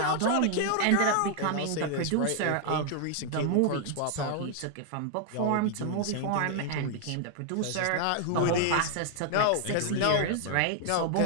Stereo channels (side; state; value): both; different; correlation 0.00